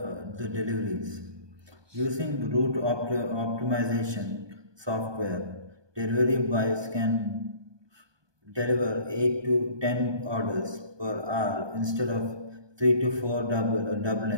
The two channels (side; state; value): left; late; 1.2 ms